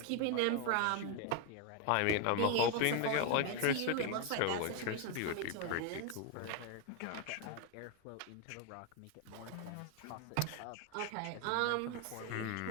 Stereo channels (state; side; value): different; both; correlation 0.01